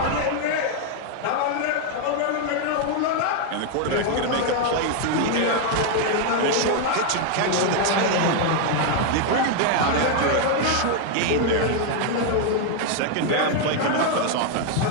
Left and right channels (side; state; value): both; different; correlation 0.00